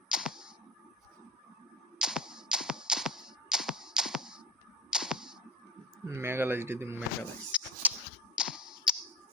মেগালাইজ দিদি মেগালাইজ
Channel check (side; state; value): both; normal; correlation 0.36